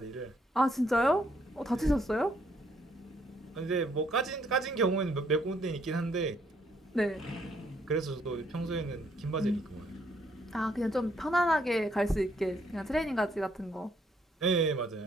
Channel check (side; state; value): both; normal; correlation 0.69